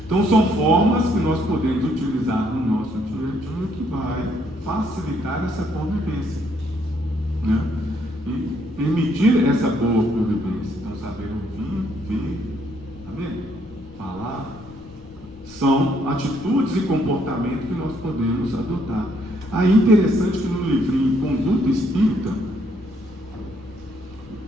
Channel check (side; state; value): left; noise; rumble, 22 dB below the sound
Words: Então são formas que nós podemos utilizar no nosso dia a dia que vai facilitar essa convivência, né? E permitir essa boa convivência. Então saber ouvir, ver, tá vendo? Falar, São atitudes e comportamento que nós podemos adotar. Aí interessante que no livrinho Conduta Espírita,